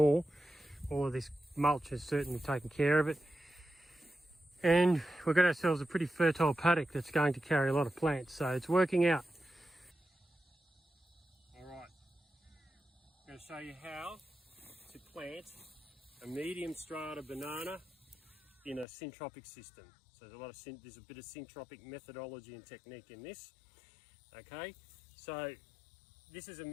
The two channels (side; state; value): right; drops out; at 18.9 s